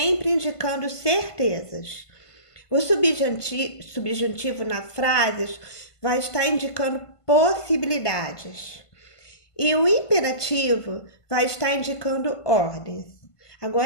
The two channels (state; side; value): late; right; 1.5 ms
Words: indicando certezas. O subjuntivo nas frases vai estar indicando possibilidades. E o imperativo vai estar indicando ordens.